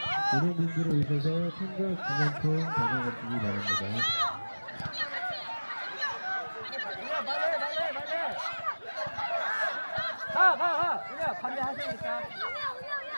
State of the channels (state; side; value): inverted; both; correlation -1.00